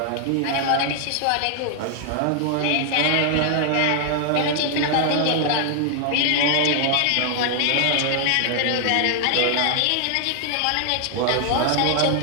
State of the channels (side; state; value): both; different; correlation 0.00